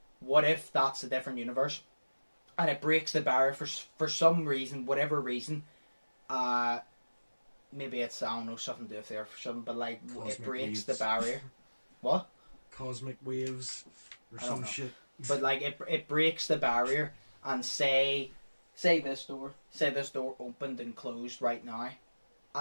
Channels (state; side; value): inverted; both; correlation -1.00